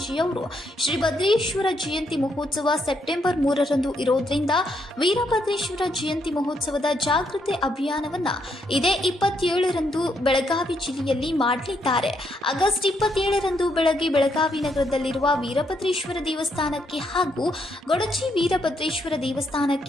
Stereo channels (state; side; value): normal; both; correlation 0.76